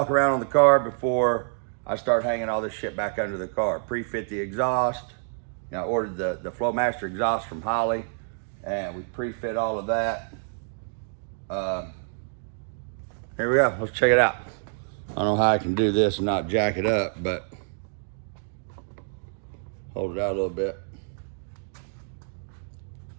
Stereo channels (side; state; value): left; silent; digital silence